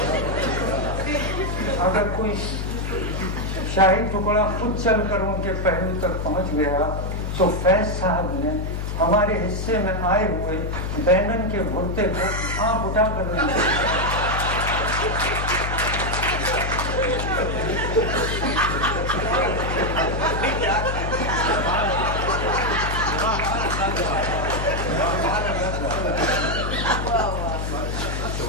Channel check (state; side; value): noise; left; hum, 2 dB below the sound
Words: اگر کوئی شاہی ٹکڑا خود چل کر ان کے پہلو تک پہنچ گیا تو فیض صاحب نے ہمارے حصے میں آئے ہوئے بینگن کے بھرتے کو آنکھ اٹھا کر